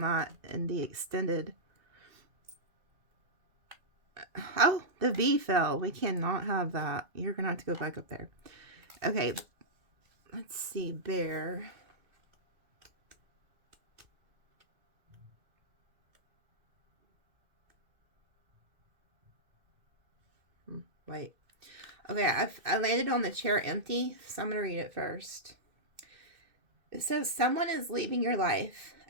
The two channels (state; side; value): late; left; 2.6 ms